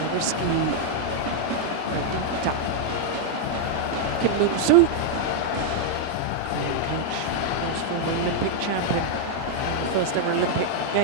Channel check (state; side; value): different; both; correlation -0.01